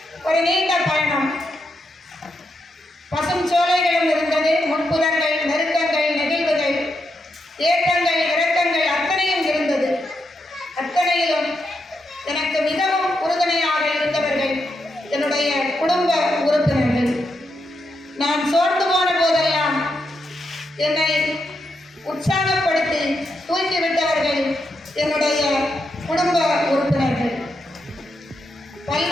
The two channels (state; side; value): normal; both; correlation 0.83